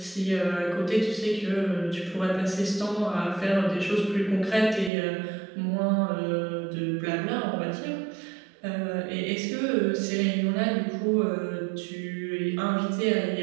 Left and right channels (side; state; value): left; drops out; at 4.9 s